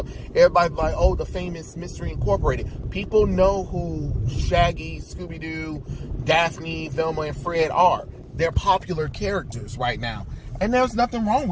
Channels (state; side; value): identical; both; correlation 1.00